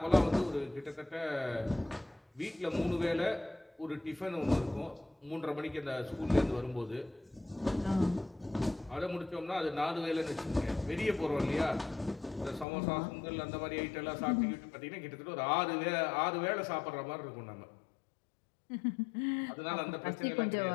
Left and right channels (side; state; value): right; drops out; at 12.7 s